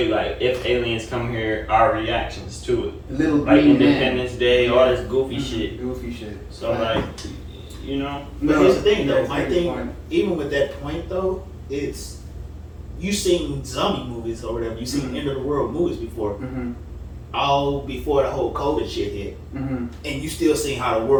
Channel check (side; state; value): both; identical; correlation 1.00